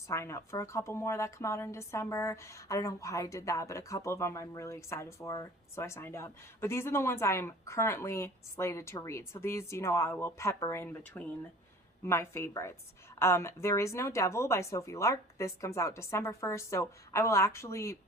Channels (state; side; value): normal; both; correlation 0.46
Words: sign up for a couple more that come out in December. I don't know why I did that, but a couple of them I'm really excited for, so I signed up. But these are the ones I am currently slated to read. So these, I will pepper in between my favorites. There Is No Devil by Sophie Lark. This comes out December 1st, so I will actually